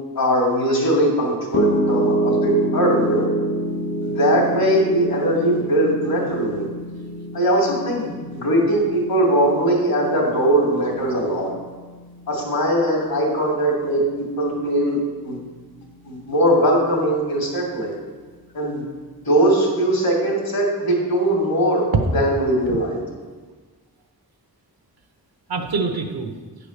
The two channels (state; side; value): normal; both; correlation 0.04